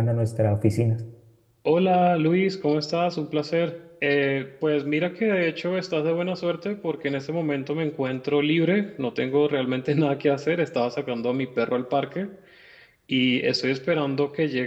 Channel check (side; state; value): both; identical; correlation 1.00